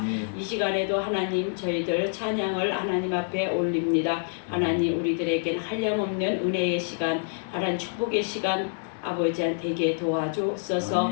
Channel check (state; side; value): silent; right; digital silence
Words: 이 시간에도 하나님 저희들 찬양을 하나님 앞에 올립니다. 하나님 우리들에게는 한량없는 은혜의 시간, 하나님 축복의 시간 아버지한테 도와주옵소서.